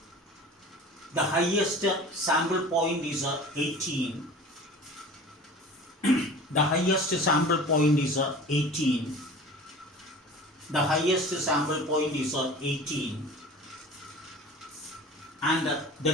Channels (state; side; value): normal; both; correlation 0.40